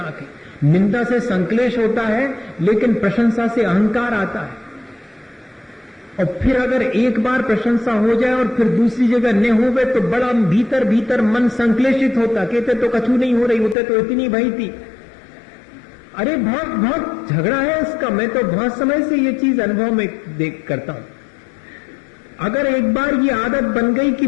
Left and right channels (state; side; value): drops out; right; at 13.8 s